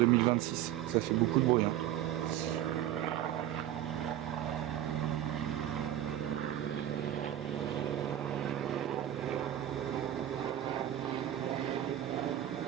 Ça fait beaucoup de bruit.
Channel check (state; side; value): quieter; left; 12.0 dB